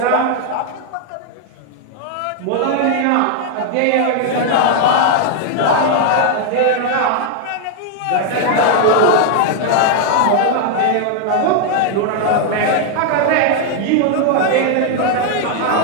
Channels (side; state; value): both; different; correlation 0.00